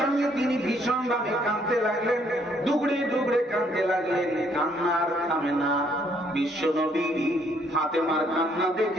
তিনি ভীষণ ভাবে কাঁদতে লাগলেন, দুগড়ে দুগড়ে কাঁদতে লাগলেন, কান্নার থামে না। বিশ্বনবী ফাতেমার কান্না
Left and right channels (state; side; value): normal; both; correlation 0.67